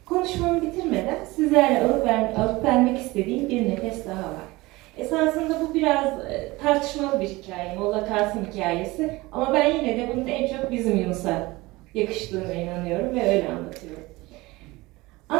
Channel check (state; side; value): quieter; left; 21.2 dB